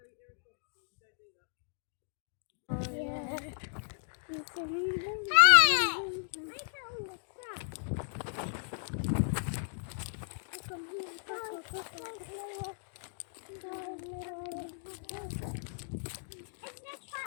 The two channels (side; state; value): right; silent; digital silence